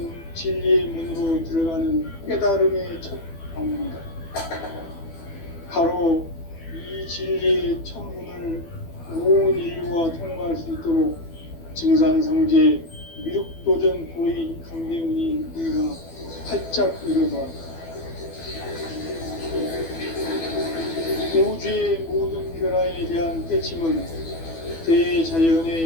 진리의 문으로 들어가는 깨달음의 첫 방문이다. 바로 이 진리의 첫 문을 온 인류가 통과할 수 있도록 증산상제 미륵도전 도인 강대문이 내가 활짝 열어놓았다. 우주의 모든 변화에 대한 깨침은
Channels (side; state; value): right; late; 12 ms